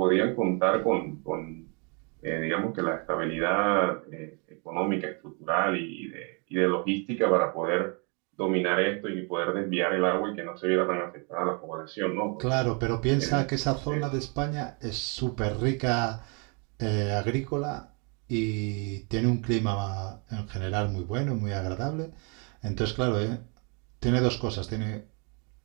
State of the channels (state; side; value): quieter; left; 35.2 dB